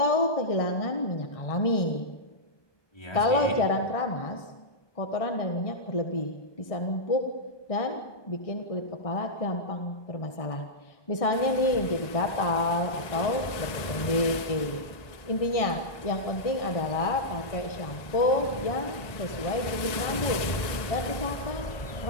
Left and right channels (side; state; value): right; late; 1.2 ms